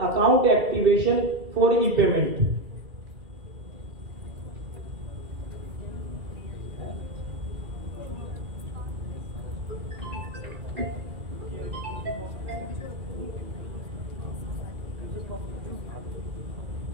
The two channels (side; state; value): left; late; 2.4 ms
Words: account activation for E payment.